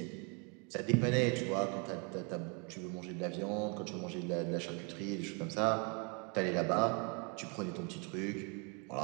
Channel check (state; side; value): quieter; left; 34.9 dB